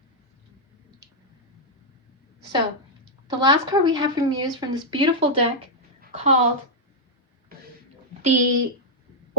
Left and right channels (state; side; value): normal; both; correlation -0.03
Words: So, the last card we have from you is from this beautiful deck called the